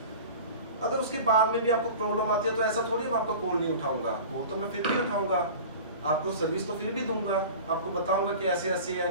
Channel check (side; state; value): both; inverted; correlation -0.38